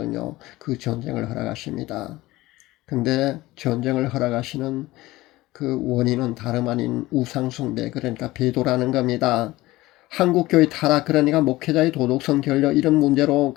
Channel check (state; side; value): quieter; right; 18.4 dB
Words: 그 전쟁을 허락하십니다. 근데 전쟁을 허락하시는 그 원인은 다름 아닌 우상숭배, 그러니까 배도라는 겁니다. 한국교회 타락, 그러니까 목회자의 도덕성 결여, 이런 문제로